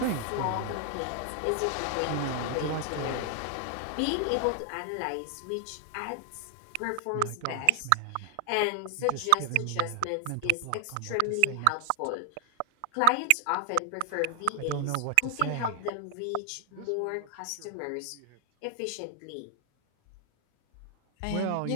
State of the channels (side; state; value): both; different; correlation 0.00